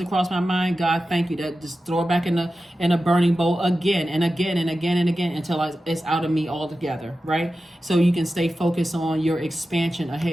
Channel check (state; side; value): normal; both; correlation 0.93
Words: across my mind, God, thank you. That just throw it back in a burning bowl again and again and again and again until it's out of me altogether, right? So you can stay focused on your expansion